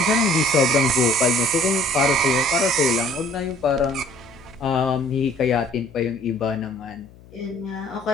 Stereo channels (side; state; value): left; noise; hum, 23 dB below the sound